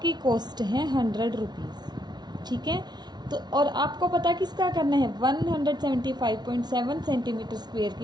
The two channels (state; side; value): late; left; 0.20 ms